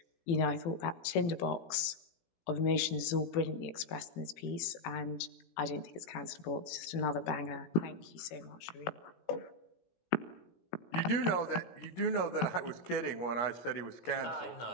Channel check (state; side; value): late; right; 18 ms